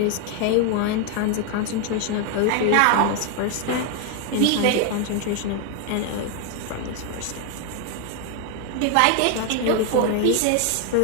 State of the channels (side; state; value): both; different; correlation 0.01